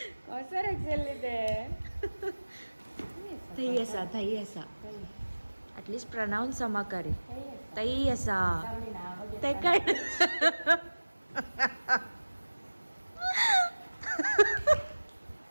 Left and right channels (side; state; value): both; inverted; correlation -1.00